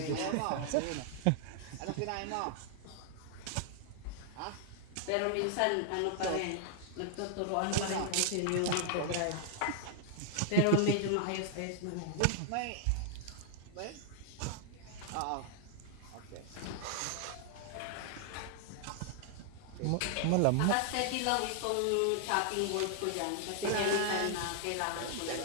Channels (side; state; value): both; different; correlation 0.00